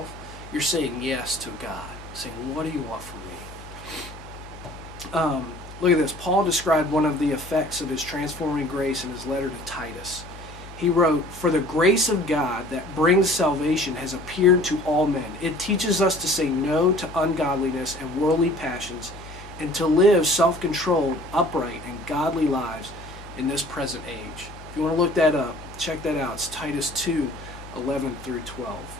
you're saying yes to God, saying, what do you want from me? Look at this. Paul described one of the effects of his transforming grace in his letter to Titus. He wrote, "For the grace of God that brings salvation has appeared to all men. It teaches us to say no to ungodliness and worldly passions, and to live self-controlled, upright, and godly lives in this present age." If you want to look that up, check that out. It's Titus 2:11 through 12.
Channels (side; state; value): left; noise; hum, 16 dB below the sound